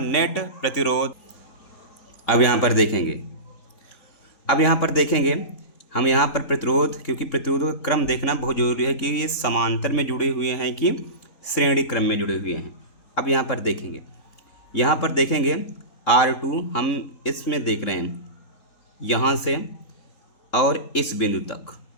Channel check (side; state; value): right; late; 3.8 ms